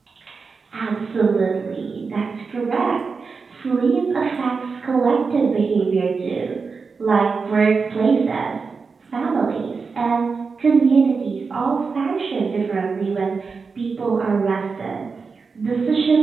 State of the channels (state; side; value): quieter; left; 4.9 dB